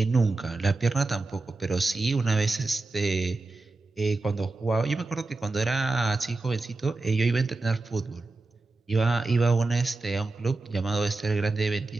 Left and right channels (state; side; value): quieter; left; 3.4 dB